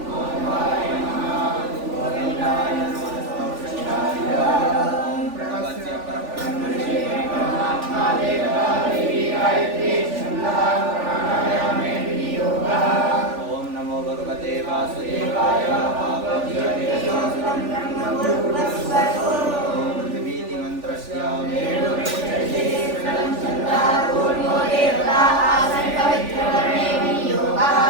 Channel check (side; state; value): left; late; 3.4 ms